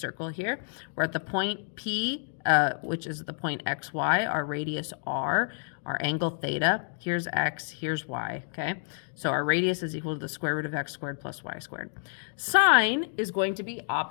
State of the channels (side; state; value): right; silent; digital silence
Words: here. We're at the point P, which is the point xy, our radius r, our angle theta. Here's x, here's y, okay? So our radius is equal to the square root of x squared plus y squared. Sine is going to be